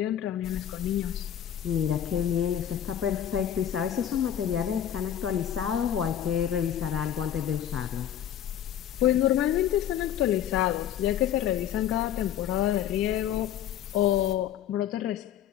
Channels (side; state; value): right; quieter; 10.3 dB